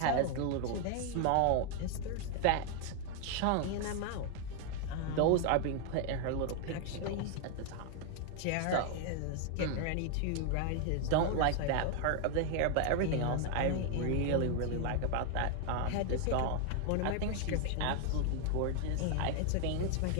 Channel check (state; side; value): different; both; correlation 0.01